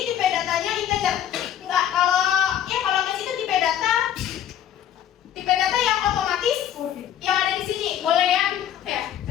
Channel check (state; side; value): quieter; right; 10.3 dB